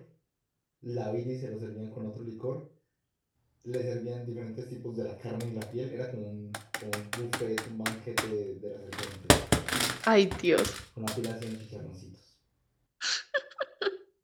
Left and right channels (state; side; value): identical; both; correlation 1.00